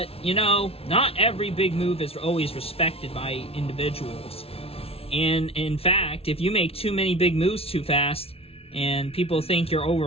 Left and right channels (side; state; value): right; late; 0.28 ms